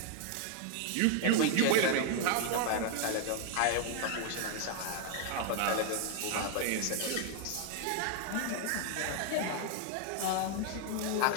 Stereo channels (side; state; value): both; different; correlation 0.00